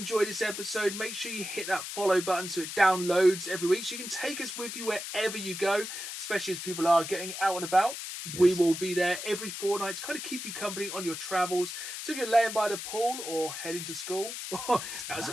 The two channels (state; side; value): noise; left; hiss, 7 dB below the sound